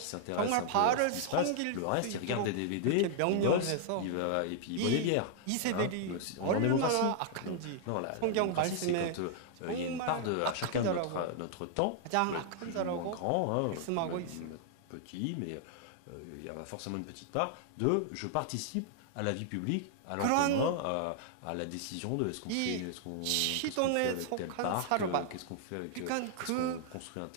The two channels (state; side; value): different; both; correlation -0.01